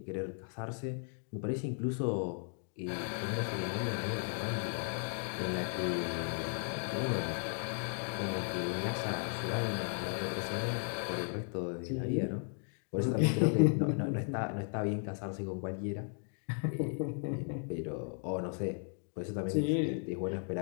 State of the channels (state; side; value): silent; right; 54 dB below the other